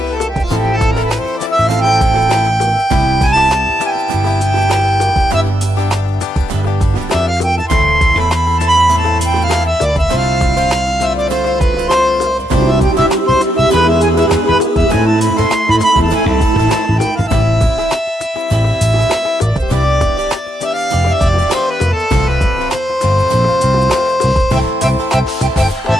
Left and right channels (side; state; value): both; normal; correlation 0.81